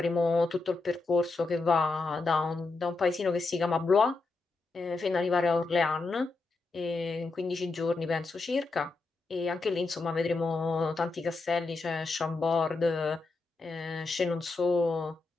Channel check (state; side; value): quieter; right; 3.6 dB